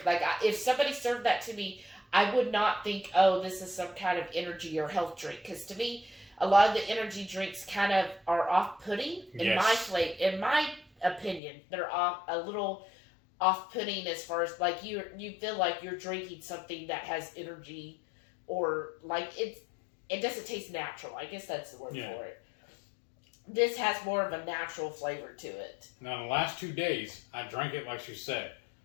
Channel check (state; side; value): drops out; right; at 11.4 s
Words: Like if somebody served that to me, I would not think, oh, this is some kind of energy or health drink. Because to me, a lot of the energy drinks kind of are off-putting. In my opinion, they're a little off-putting as far as like you feel like you're drinking something that has energy, or like it doesn't taste natural. I guess that's the word for it. This has more of a natural flavor to it. Now, in the last 2 days, I drank it like she said.